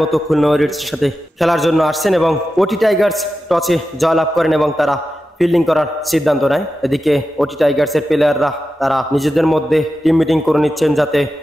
মতো খুলনা ওয়ারিয়ার্সের সাথে খেলার জন্য আসছেন এবং ওটি টাইগার্স টসে জয়লাভ করেন এবং তারা ফিল্ডিং করার সিদ্ধান্ত নেয়। এদিকে ওটি টাইগার্সের প্লেয়াররা তারা নিজেদের মধ্যে টিম মিটিং করে নিচ্ছেন যাতে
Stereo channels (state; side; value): normal; both; correlation 0.92